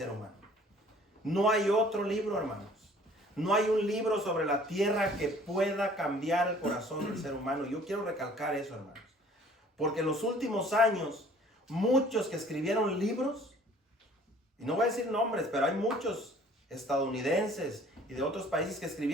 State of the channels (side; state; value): both; normal; correlation 0.53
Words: humano. No hay otro libro, hermanos. No hay un libro sobre la tierra que pueda cambiar el corazón del ser humano. Yo quiero recalcar eso, hermanos. Porque en los últimos años, muchos que escribieron libros, y no voy a decir nombres, pero hay muchos estadounidenses y de otros países que